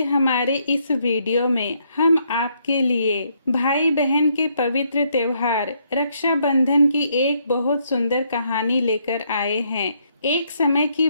हमारे इस वीडियो में हम आपके लिए भाई बहन के पवित्र त्योहार रक्षाबंधन की एक बहुत सुंदर कहानी लेकर आए हैं। एक समय की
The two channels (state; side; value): inverted; both; correlation -0.73